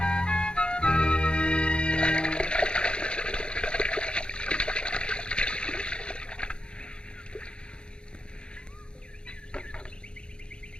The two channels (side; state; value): right; late; 0.052 ms